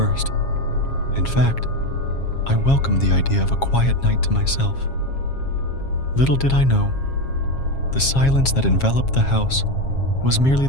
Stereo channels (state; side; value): late; right; 7.4 ms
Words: In fact, I welcomed the idea of a quiet night to myself. Little did I know, the silence that enveloped the house was merely